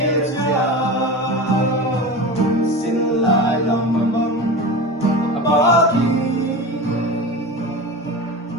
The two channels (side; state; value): both; normal; correlation 0.29